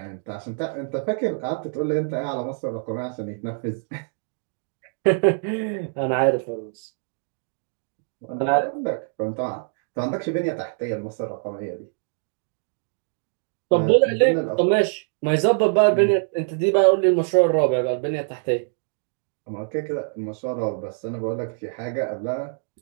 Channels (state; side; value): silent; left; digital silence